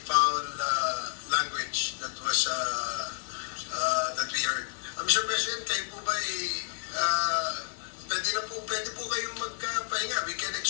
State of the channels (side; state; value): right; silent; digital silence